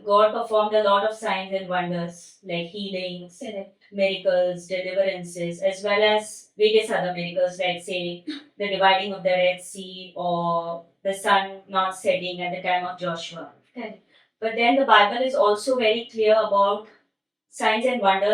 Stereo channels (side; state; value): both; identical; correlation 1.00